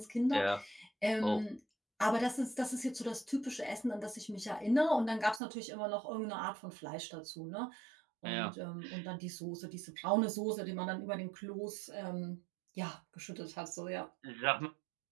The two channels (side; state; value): left; drops out; at 5.4 s